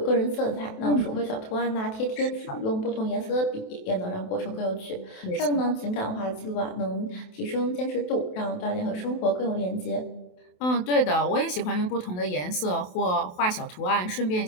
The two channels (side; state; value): right; late; 28 ms